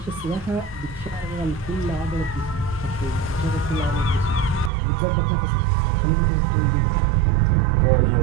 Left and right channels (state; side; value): drops out; left; at 4.7 s